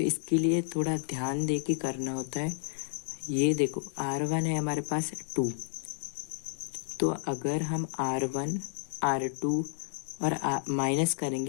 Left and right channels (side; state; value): right; silent; digital silence